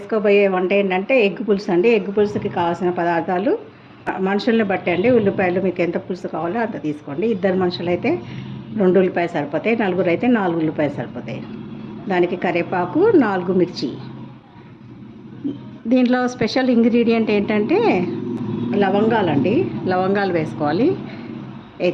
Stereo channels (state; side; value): identical; both; correlation 1.00